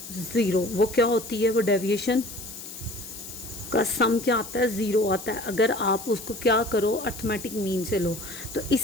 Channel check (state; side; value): noise; left; hiss, 12 dB below the sound